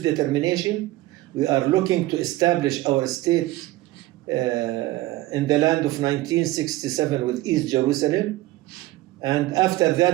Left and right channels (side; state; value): left; quieter; 17.5 dB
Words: We are looking to establish our state in the land of 1967 with East Jerusalem. And after